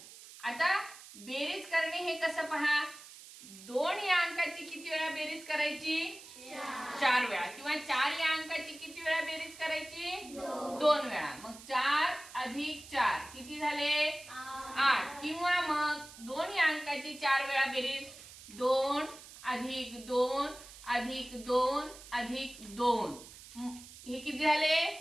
आता बेरीज करणे हे कसं पहा? 2 या अंकाची किती वेळा बेरीज करायची? 4 वेळा. किंवा 4 या अंकाची किती वेळा बेरीज करायची? 2 वेळा. मग 4 अधिक 4 किती झाले? 8. किंवा मग 2 या अंकाची 4 वेळा बेरीज 2 अधिक 2 अधिक 2 अधिक 2 हे किती झाले?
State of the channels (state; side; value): noise; right; hiss, 17 dB below the sound